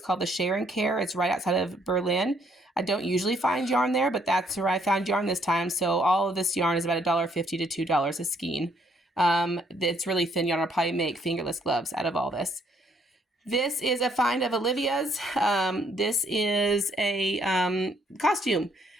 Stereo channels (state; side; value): normal; both; correlation 0.69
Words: called the Share and Care. It's right outside of Berlin. I don't usually find yarn there, but that's where I found yarn this time. So all of this yarn is about $1.50 to $2 a skein. It's really thin yarn. I'll probably make fingerless gloves out of all this. This is a find of Olivia's. This is a costume.